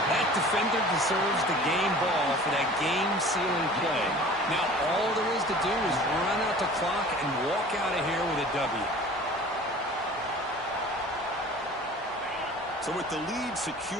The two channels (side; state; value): both; normal; correlation 0.44